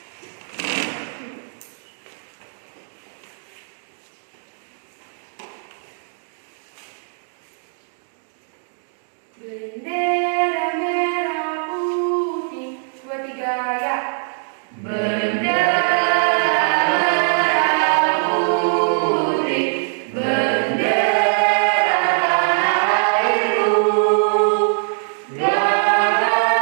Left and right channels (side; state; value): left; silent; 65 dB below the other